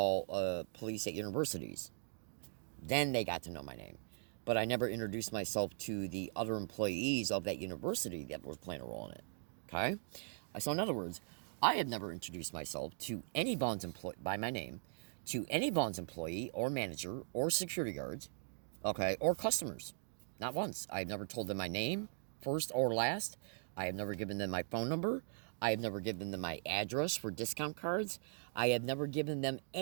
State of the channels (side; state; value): left; silent; digital silence